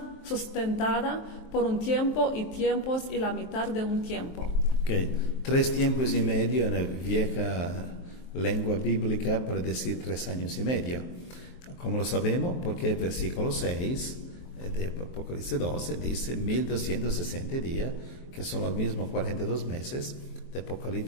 por un tiempo y tiempos y la mitad de un tiempo. Ok, 3 tiempos y medio en la vieja lengua bíblica para decir 3 años y medio. ¿Cómo lo sabemos? Porque el versículo 6 de Apocalipsis 12 dice 1260 días, que son los mismos 42 meses de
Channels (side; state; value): right; late; 23 ms